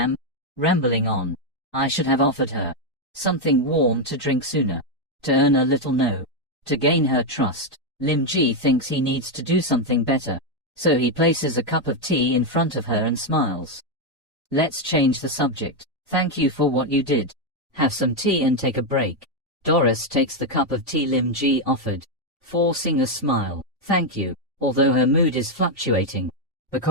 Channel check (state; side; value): normal; both; correlation 0.03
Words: rambling on. I should have offered her something warm to drink sooner, to earn a little no, to gain her trust. Lim Ji thinks he needs to do something better, so he places a cup of tea in front of her and smiles. Let's change the subject. Thank you for what you did. Have some tea and take a break. Doris takes the cup of tea Lim Ji offered, forcing a smile. Thank you. Although her mood is fluctuating